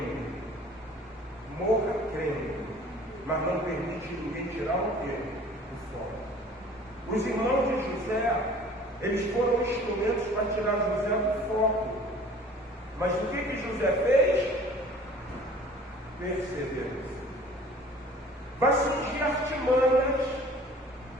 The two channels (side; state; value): both; normal; correlation 0.49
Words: Morra crendo. Mas não permite ninguém tirar o quê? O foco. Os irmãos de José, eles foram instrumentos para tirar José do foco. Mas o que José fez? Perseverança. semanas